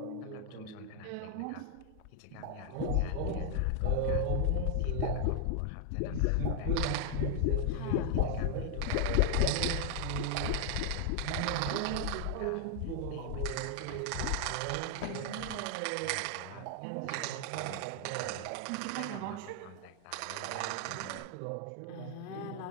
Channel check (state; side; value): different; both; correlation 0.00